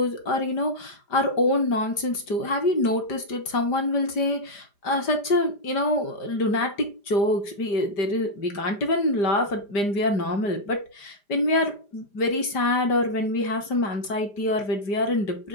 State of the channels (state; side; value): late; right; 5.0 ms